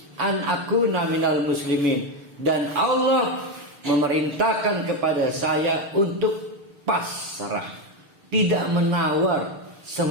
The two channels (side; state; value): left; late; 6.7 ms